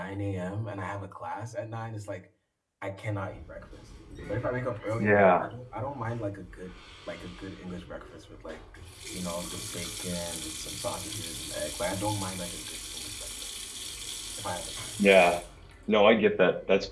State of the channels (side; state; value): both; identical; correlation 1.00